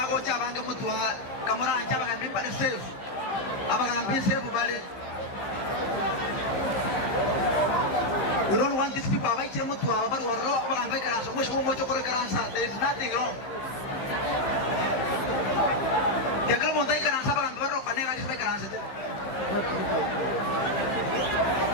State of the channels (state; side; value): late; right; 15 ms